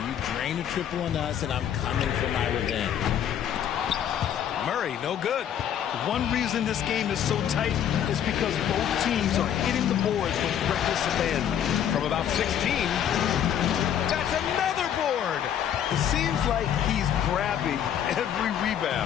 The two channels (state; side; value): quieter; right; 9.6 dB